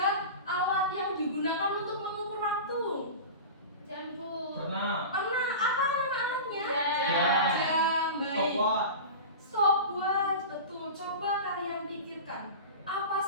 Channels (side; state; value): both; inverted; correlation -0.30